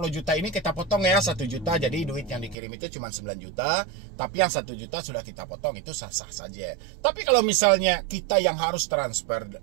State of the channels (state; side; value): drops out; left; at 2.6 s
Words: juta ini kita potong ya 1 juta. Jadi duit yang dikirim itu cuma 9 juta. Tapi yang 1 juta sudah kita potong, itu sah-sah saja. Tapi kalau misalnya kita yang harus transfer